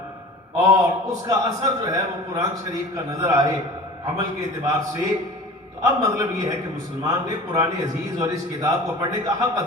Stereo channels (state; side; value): normal; both; correlation 0.39